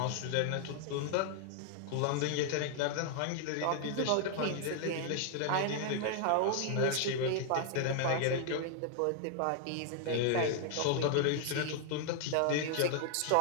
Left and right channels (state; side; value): different; both; correlation 0.00